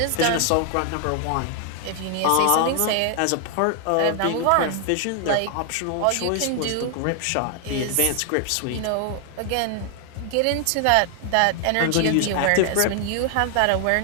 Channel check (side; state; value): both; different; correlation 0.00